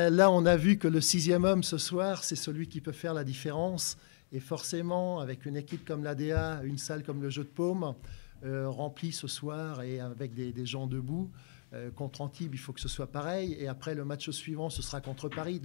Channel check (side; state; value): right; silent; digital silence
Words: là, on a vu que le 6e homme ce soir, c'est celui qui peut faire la différence. Et forcément, avec une équipe comme l'ADA, une salle comme le Jeu de Paume, remplie ce soir et avec des gens debout, contre Antibes, il faut que ce soit pareil. Et après, le match suivant, ce sera contre Paris,